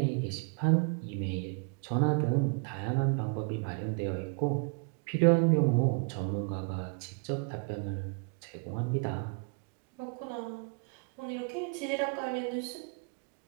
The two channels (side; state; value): left; quieter; 36.4 dB